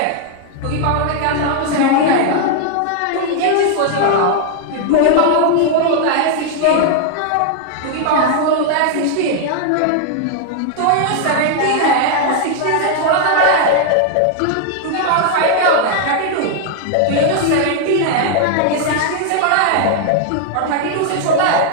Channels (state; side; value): different; both; correlation -0.01